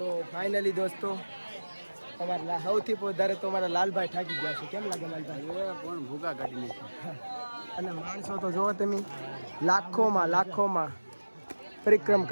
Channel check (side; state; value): both; inverted; correlation -1.00